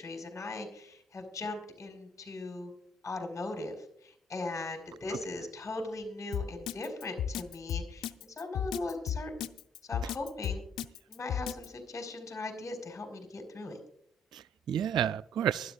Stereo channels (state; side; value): normal; both; correlation 0.62